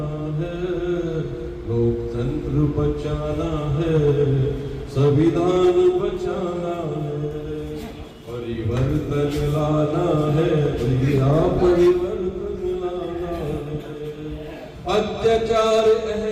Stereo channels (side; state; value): both; identical; correlation 1.00